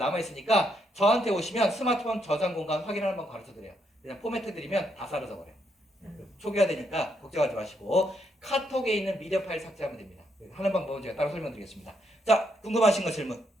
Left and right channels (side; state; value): both; normal; correlation 0.77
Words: 저한테 오시면 스마트폰 저장 공간 확인을 한번 가르쳐드려요. 그냥 포맷해 드리면 다 사라져버려요. 초기화 되니까 걱정하지 마시고 카톡에 있는 미디어 파일 삭제하면 됩니다. 하는 방법은 제가 따로 설명드리겠습니다. 자, 궁금하신 거 질문